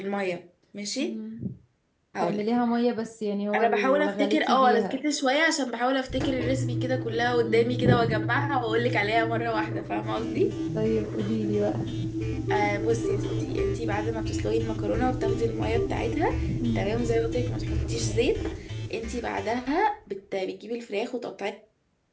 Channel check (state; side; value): identical; both; correlation 1.00